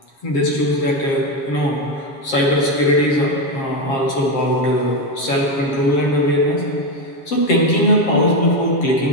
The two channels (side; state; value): right; late; 7.5 ms